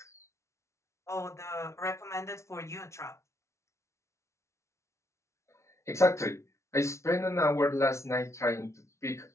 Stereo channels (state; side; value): late; right; 0.13 ms